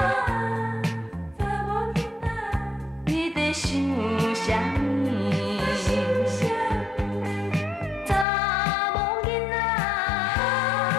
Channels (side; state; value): right; drops out; at 8.2 s